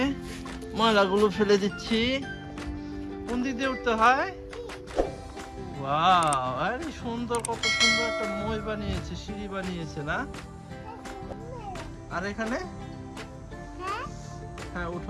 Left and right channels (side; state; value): both; identical; correlation 1.00